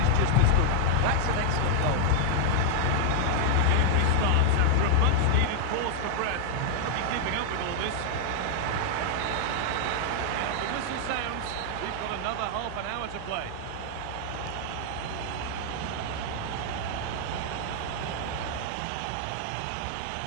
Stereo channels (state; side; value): different; both; correlation 0.00